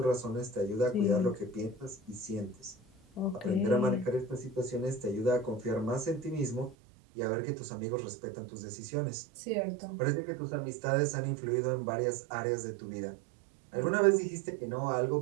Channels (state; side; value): drops out; left; at 6.8 s